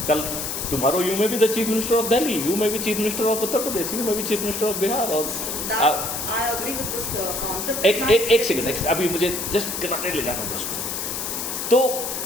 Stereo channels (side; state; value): left; noise; hiss, 4 dB below the sound